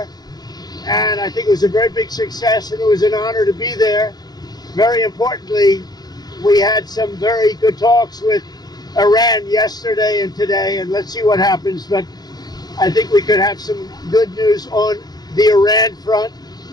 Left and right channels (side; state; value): right; late; 0.19 ms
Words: And I think it was a very big success, and it was an honor to be there. Very importantly, we had some very good talks with Iran yesterday and today, and let's see what happens. But I think we could have some good news on the Iran front.